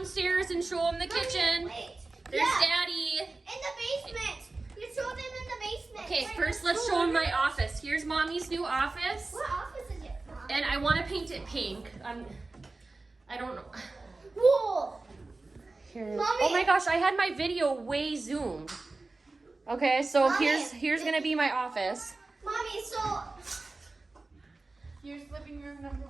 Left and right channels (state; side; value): quieter; left; 3.4 dB